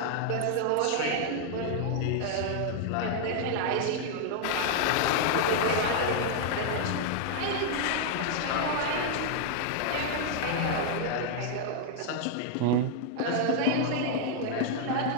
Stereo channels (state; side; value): different; both; correlation -0.01